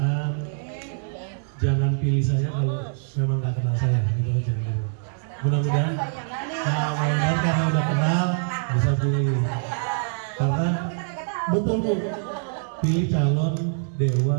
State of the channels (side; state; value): left; silent; 62 dB below the other